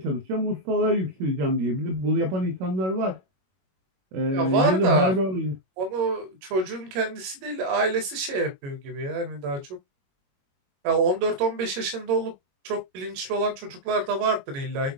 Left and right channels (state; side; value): late; left; 21 ms